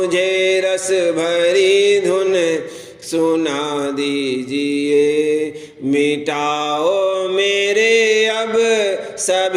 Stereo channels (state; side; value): identical; both; correlation 1.00